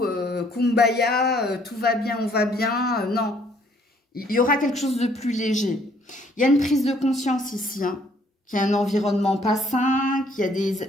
Kumbaya, tout va bien, on va bien. Non. Il y aura quelque chose de plus léger. Il y a une prise de conscience ici, hein, qu'il y a un environnement pas sain, qu'il y a des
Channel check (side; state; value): both; normal; correlation 0.63